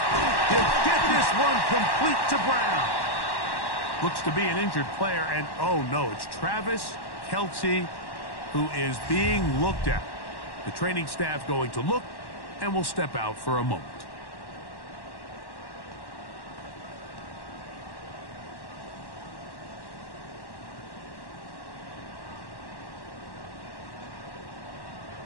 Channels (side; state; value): right; late; 1.1 ms